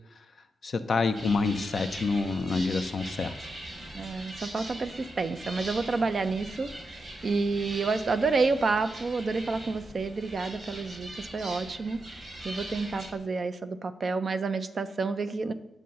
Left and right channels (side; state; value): both; normal; correlation 0.86